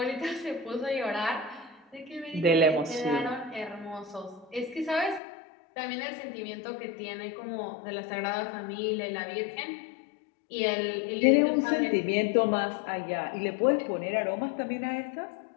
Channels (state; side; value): drops out; right; at 5.2 s